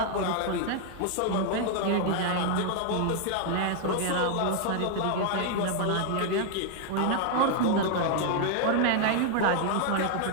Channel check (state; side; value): different; both; correlation 0.00